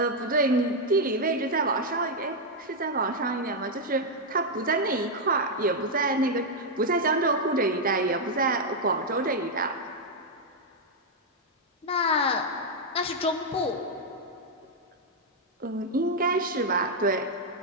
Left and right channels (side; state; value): both; normal; correlation -0.01